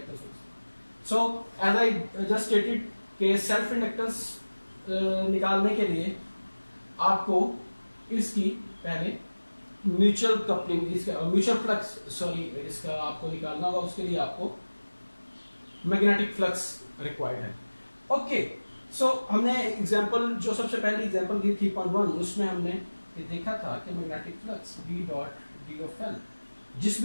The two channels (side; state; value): both; inverted; correlation -1.00